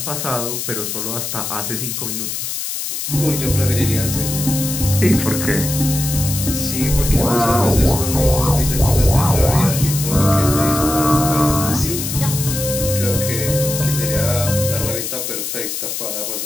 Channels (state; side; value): noise; left; hiss, 4 dB below the sound